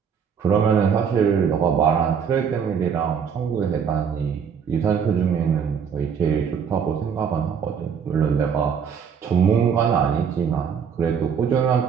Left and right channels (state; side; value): quieter; left; 7.1 dB